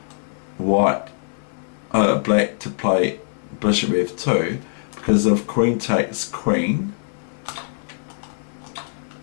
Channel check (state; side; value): silent; right; 64 dB below the other